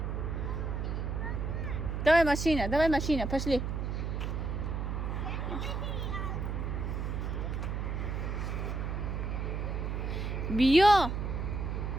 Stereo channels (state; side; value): noise; right; hum, 2 dB below the sound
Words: давай машина пошли بیا